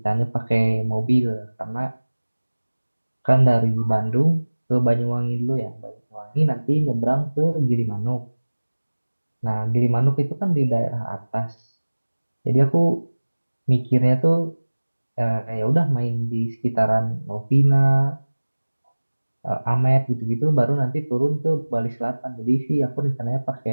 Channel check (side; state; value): both; inverted; correlation -1.00